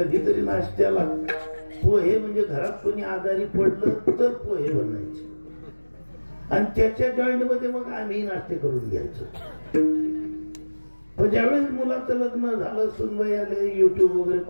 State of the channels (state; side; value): inverted; both; correlation -1.00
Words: नाश्त्याला पोहे, म्हणजे घरात कोणी आजारी पडलं तर पोहे बनायचे आणि त्याच्या जॉईंट मध्ये मग आम्ही नाश्ते करून घ्यायचो. पण ज्यावेळेस मुलाचं लग्न झालं, सुनबाई आले, युट्यूब वगैरे